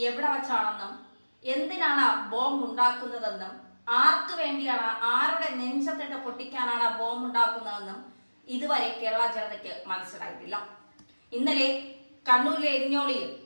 എവിടെ വച്ചാണെന്നും എന്തിനാണ് ബോംബ് ഉണ്ടാക്കുന്നതെന്നും ആർക്ക് വേണ്ടിയാണ്, ആരുടെ നെഞ്ചത്തിട്ട് പൊട്ടിക്കാനാണ് ബോംബ് ഉണ്ടാക്കുന്നതെന്നും ഇതുവരെ കേരള ജനതയ്ക്ക് മനസ്സിലായിട്ടില്ല. ഇന്നലെ കണ്ണൂരിലെ എരിഞ്ഞോളിയിൽ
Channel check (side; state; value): both; inverted; correlation -1.00